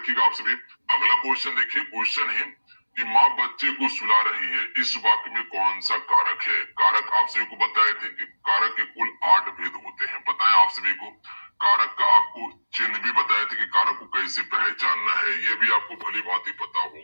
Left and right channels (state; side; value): inverted; both; correlation -1.00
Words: आप सभी। अगला क्वेश्चन देखिए, क्वेश्चन है कि माँ बच्चे को सुला रही है, इस वाक्य में कौन सा कारक है? कारक आप सभी को बताए थे कि कारक के कुल 8 भेद होते हैं, बताएं आप सभी को। कारक का आपको चिन्ह भी बताए थे कि कारक को कैसे पहचानना है, ये भी आपको भली भांति पता